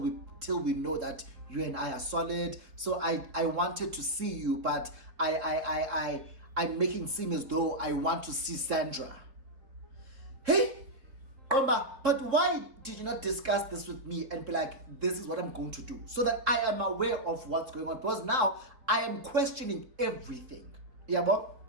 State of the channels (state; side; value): late; left; 3.7 ms